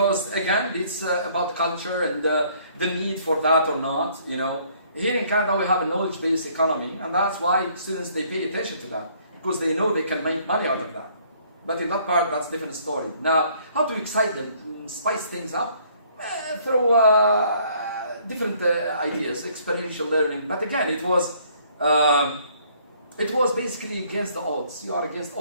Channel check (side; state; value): both; inverted; correlation -0.62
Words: again, it's about culture and the need for that or not. You know, here in Canada we have a knowledge-based economy, and that's why students they pay attention to that because they know they can make money out of that. But in that part, that's a different story. Now, how to excite them, spice things up through different ideas, experiential learning. But again, it was basically against the odds. You are against